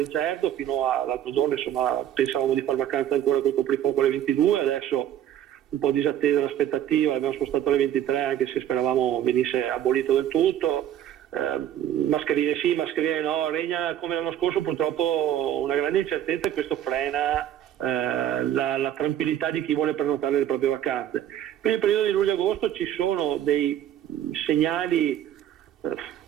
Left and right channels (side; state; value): left; quieter; 11.0 dB